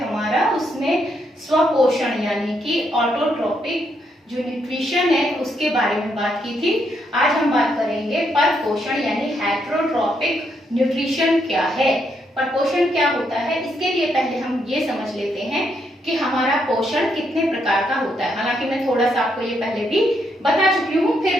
उसमें स्वपोषण यानी कि ऑटोट्रोपिक जो न्यूट्रिशन है उसके बारे में बात की थी। आज हम बात करेंगे परपोषण यानी हेटेरोट्रॉपिक न्यूट्रिशन क्या है, परपोषण क्या होता है। इसके लिए पहले हम ये समझ लेते हैं कि हमारा पोषण कितने प्रकार का होता है। हालांकि मैं थोड़ा सा आपको ये पहले भी बता चुकी हूँ, फिर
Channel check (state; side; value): normal; both; correlation 0.77